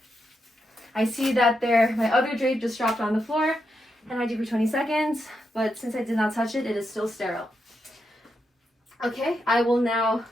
I see that my other drape just dropped on the floor, and I do for 20 seconds, but since I did not touch it, it is still sterile. Okay, I will now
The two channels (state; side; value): normal; both; correlation 0.84